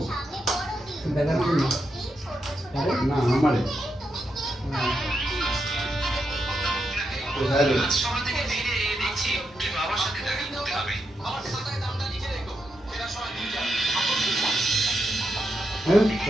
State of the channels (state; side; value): normal; both; correlation 0.84